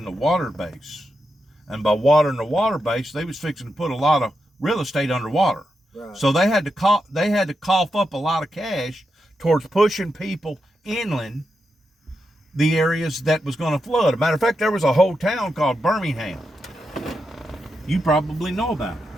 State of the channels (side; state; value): both; normal; correlation 0.86